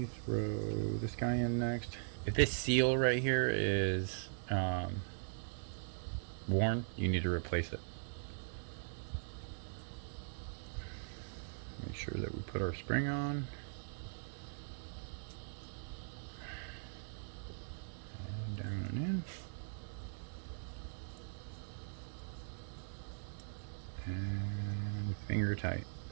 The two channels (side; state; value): left; silent; digital silence